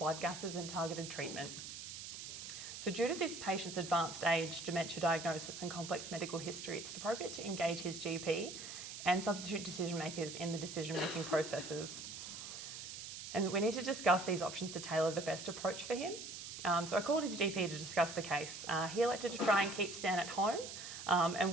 gases and targeted treatment. So due to this patient's advanced age, dementia diagnosis and complex medical history, it's appropriate to engage his GP and substitute decision makers in the decision-making processes. And we need to discuss these options to tailor the best approach for him. So I called his GP to discuss the case. He elected to try and keep Stan at home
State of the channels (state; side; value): noise; right; hiss, 9 dB below the sound